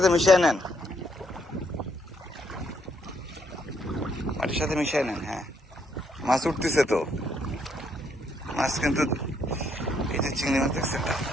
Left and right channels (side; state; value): both; normal; correlation 0.72